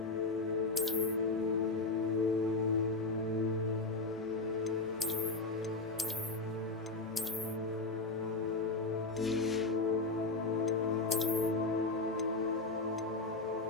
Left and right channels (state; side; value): quieter; right; 3.5 dB